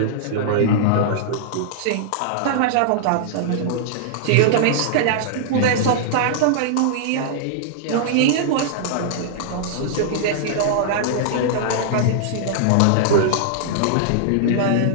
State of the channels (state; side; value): different; both; correlation -0.02